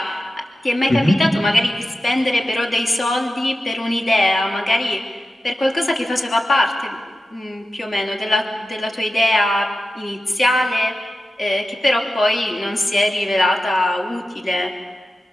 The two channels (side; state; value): both; normal; correlation 0.93